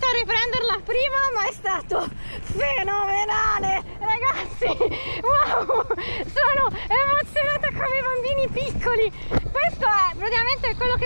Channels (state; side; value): inverted; both; correlation -1.00